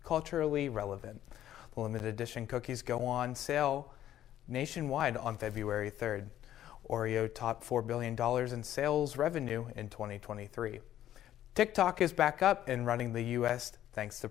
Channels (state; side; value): quieter; right; 12.0 dB